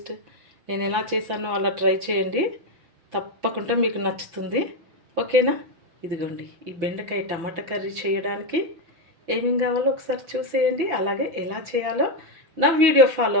నేను ఎలా చేశానో అలా ట్రై చేయండి, తప్పకుండా మీకు నచ్చుతుంది. ఓకేనా? ఇదిగోండి, ఈ బెండకాయ టమాటా కర్రీ చేయడానికి ఏమేం కావాలో ఒకసారి చూసేయండి. అలాగే ఎలా చేయాలో నా వీడియో ఫాలో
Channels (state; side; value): late; left; 6.0 ms